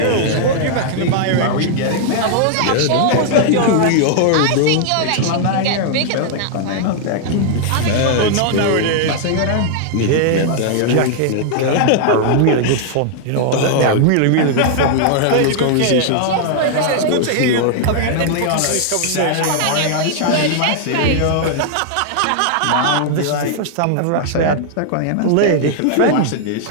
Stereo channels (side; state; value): both; different; correlation -0.01